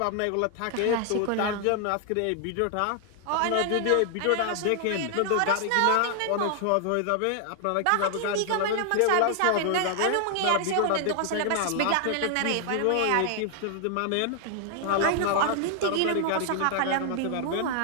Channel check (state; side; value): different; both; correlation 0.00